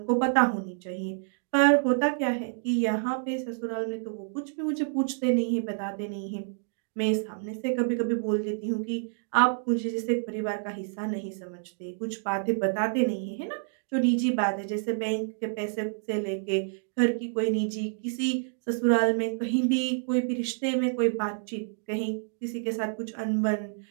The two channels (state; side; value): silent; left; digital silence